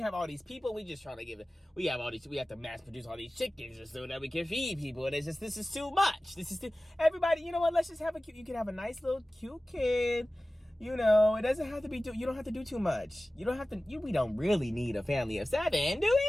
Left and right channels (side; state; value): both; normal; correlation 0.96